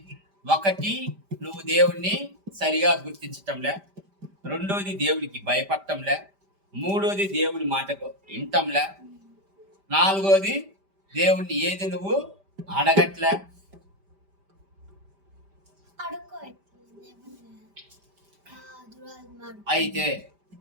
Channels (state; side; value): late; left; 5.1 ms